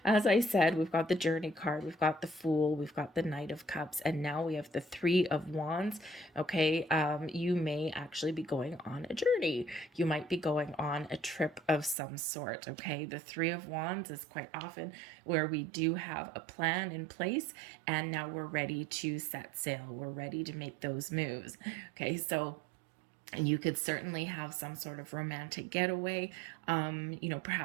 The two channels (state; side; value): drops out; left; at 12.0 s